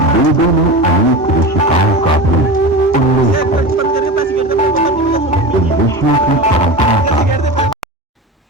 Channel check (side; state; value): both; normal; correlation 0.28